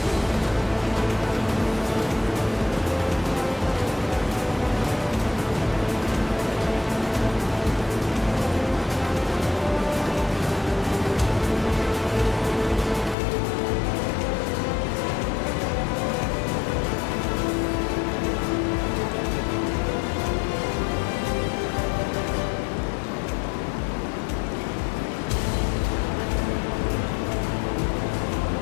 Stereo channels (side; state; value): right; drops out; at 13.2 s